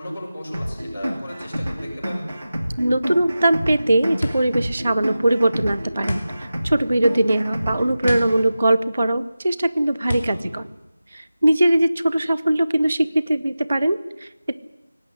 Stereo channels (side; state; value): both; inverted; correlation -0.94